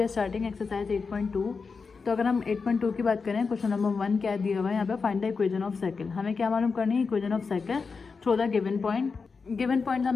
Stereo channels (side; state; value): right; quieter; 4.9 dB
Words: are starting exercise 8.2। तो अगर हम 8.2 की बात करें, क्वेश्चन नंबर 1 क्या दिया हुआ है यहाँ पे, find the equation of circle. हमें क्या मालूम करनी है, equation of circle through the given point. Given point